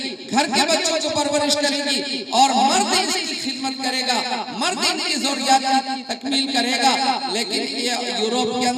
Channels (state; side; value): identical; both; correlation 1.00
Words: گھر کے بچوں کو پرورش کرے گی، اور مرد اس کی خدمت کرے گا، مرد ان کی ضروریات کی تکمیل کرے گا۔ لیکن یہ یوروپ کے